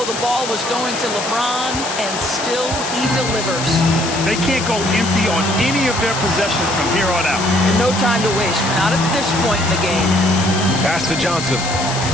the ball was going to LeBron, and still he delivers. They can't go empty on any of their possessions from here on out. And no time to waste, not at this point in the game. Pass to Johnson.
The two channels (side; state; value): left; noise; hiss, 7 dB below the sound